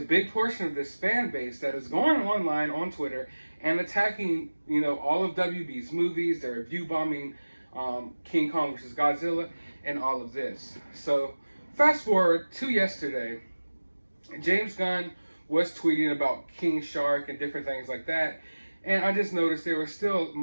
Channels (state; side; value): inverted; both; correlation -1.00